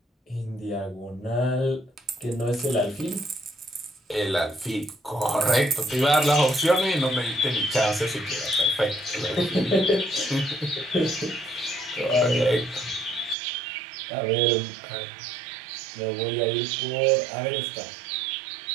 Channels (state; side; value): drops out; left; at 13.4 s